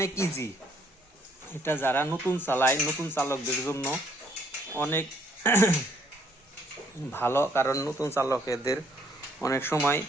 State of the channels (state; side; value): normal; both; correlation 0.65